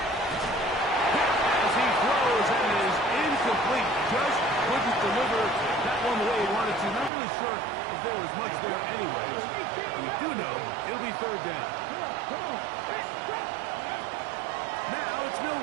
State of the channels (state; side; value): drops out; left; at 7.1 s